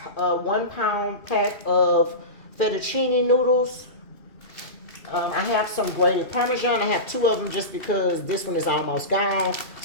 a 1 pound pack of fettuccine noodles. I have some grated Parmesan. I have 2 of them just because this one is almost gone.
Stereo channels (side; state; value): right; late; 2.4 ms